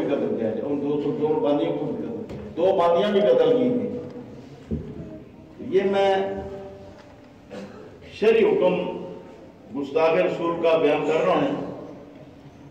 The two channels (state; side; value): identical; both; correlation 1.00